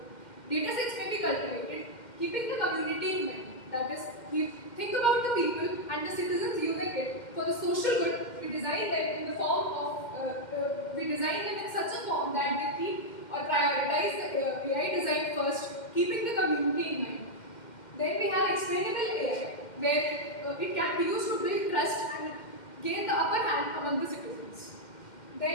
cultivated, keeping the community in mind. That is, we think about the people and the citizens using it for the social good. We design them in the form of we design them in such a form that they keep or prioritize the AI design first, keeping the community in mind. Then we have explainable AI, where it can be used to build trust and gain the upper hand among the citizens.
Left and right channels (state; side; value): late; right; 2.1 ms